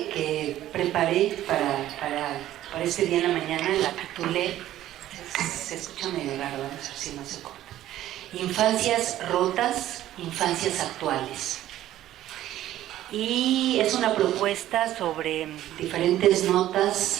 preparé para este día en la mañana la titulé, se escucha medio raro, vamos a ver si no se corta: Infancias rotas, infancias actuales. Y es una propuesta sobre diferentes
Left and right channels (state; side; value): quieter; left; 13.4 dB